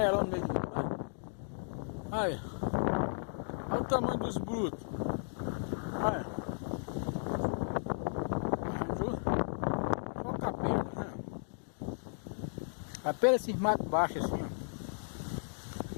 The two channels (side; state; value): right; silent; digital silence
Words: no meio do mundo? Aí. Olha o tamanho dos brutos. Olha. Olha o capelo. Né? Capelo esses matos baixos assim, ó.